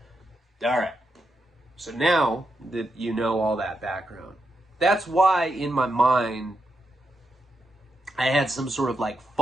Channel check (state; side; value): normal; both; correlation 0.84